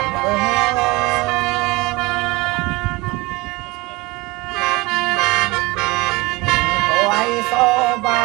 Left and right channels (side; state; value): left; quieter; 22.3 dB